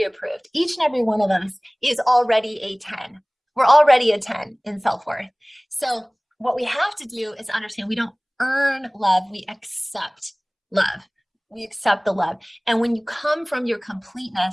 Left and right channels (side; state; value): both; identical; correlation 1.00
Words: Each and every one of us is already a 10. We're already a 10 in self-worth. So what we have to do is understand we don't earn love. We accept love. We accept the love. And when you come from your